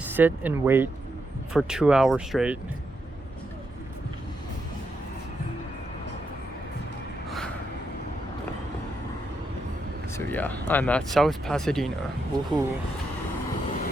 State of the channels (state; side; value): normal; both; correlation 0.82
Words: and wait for 2 hours straight. So yeah, I'm at South Pasadena. Woohoo.